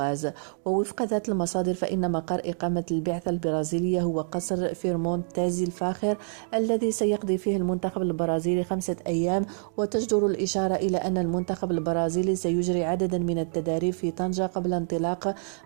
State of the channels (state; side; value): silent; left; digital silence